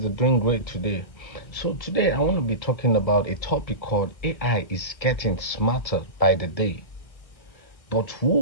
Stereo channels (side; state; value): right; late; 1.5 ms